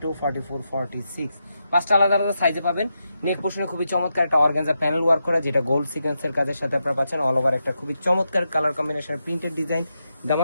44, 46, পাঁচটা আলাদা আলাদা সাইজে পাবেন। নেক পোর্শনে খুবই চমৎকার একটা অর্গানজা প্যানেল ওয়ার্ক করা, যেটা গোল্ড সিকোয়েন্সের কাজের সাথে আপনারা পাচ্ছেন। অল ওভার একটা খুবই চমৎকার কালার কম্বিনেশন প্রিন্টেড ডিজাইন।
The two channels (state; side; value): inverted; both; correlation -0.86